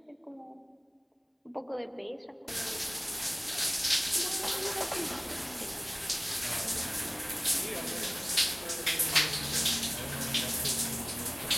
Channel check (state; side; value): identical; both; correlation 1.00